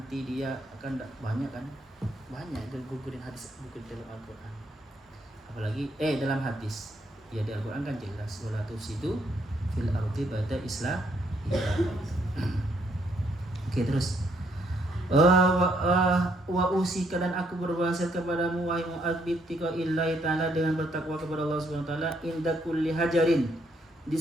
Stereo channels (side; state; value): both; normal; correlation 0.72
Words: dia akan banyak itu gugurin hadis, gugurin dalam Al-Quran. Apalagi dalam hadis ya, di Al-Quran kan jelas, wala tufsidu fil ardi ba'da islah. Oke, terus wa usika, dan aku berwasiat kepadamu wahai Mu'adz bittaqa'illahi ta'ala, dengan bertakwa kepada Allah Subhanahu wa taala, inda kulli hajarin, di